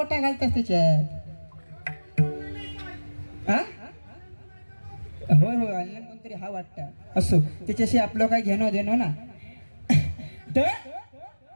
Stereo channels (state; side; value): inverted; both; correlation -1.00